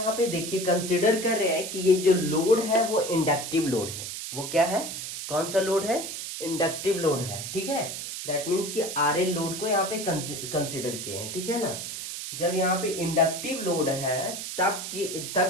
पे देखिए कंसिडर कर रहे हैं कि ये जो लोड है वो इंडक्टिव लोड है। वो क्या है, कौन सा लोड है, इंडक्टिव लोड है, ठीक है। दैट मीन्स कि आर एल लोड को यहाँ पे कंसिडर किए हैं, ठीक है ना। जब यहाँ पे इंडक्टिव लोड है तब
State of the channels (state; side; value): noise; right; hiss, 7 dB below the sound